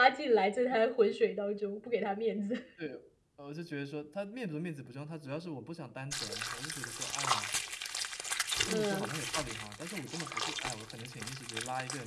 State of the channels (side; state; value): both; identical; correlation 1.00